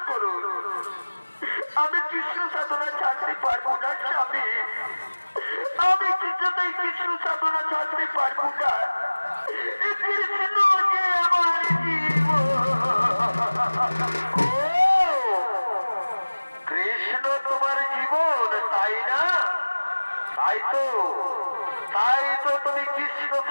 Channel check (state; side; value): inverted; both; correlation -1.00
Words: করুন। আমি কৃষ্ণ সাধনা ছাড়তে পারবো না স্বামী, আমি কিছুতেই কৃষ্ণ সাধনা ছাড়তে পারবো না। কৃষ্ণ যে আমার জীবন। কৃষ্ণ তোমার জীবন, তাই না? তাই তো, তাই তো তুমি কৃষ্ণ